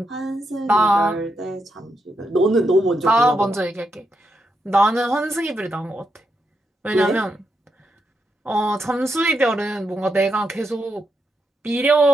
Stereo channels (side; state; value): both; normal; correlation 0.83